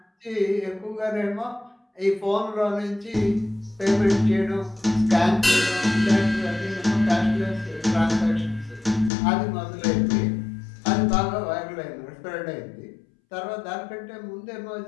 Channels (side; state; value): right; drops out; at 9.1 s